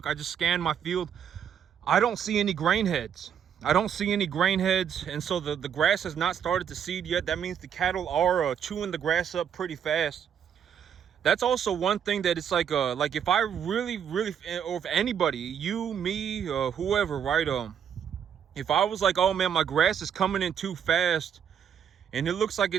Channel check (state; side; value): quieter; left; 8.4 dB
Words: just scan my field, I don't see any grain heads. I don't see any grain heads, and so the grass has not started to seed yet. That means the cattle are chewing the grass up pretty fast. That's also one thing that it's like if I really, or if anybody, you, me, whoever, right? If I was like, oh man, my grass is coming in too fast and it looks like